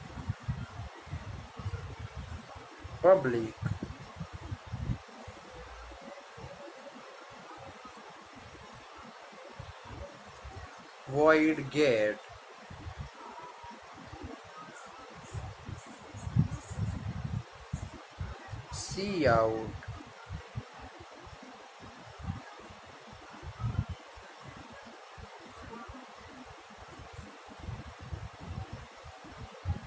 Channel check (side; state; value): both; identical; correlation 1.00